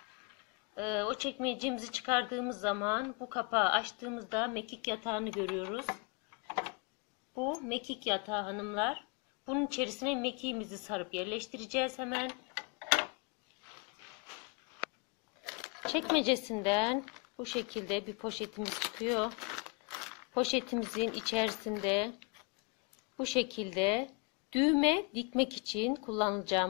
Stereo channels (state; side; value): quieter; right; 30.9 dB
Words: O çekmecemizi çıkardığımız zaman bu kapağı açtığımızda mekik yatağını görüyoruz. Bu mekik yatağı hanımlar. Bunun içerisine mekiğimizi sarıp yerleştireceğiz hemen. Çekmecesinden bu şekilde bir poşetimiz çıkıyor. Poşetimizin içerisinde bu şekilde düğme dikmek için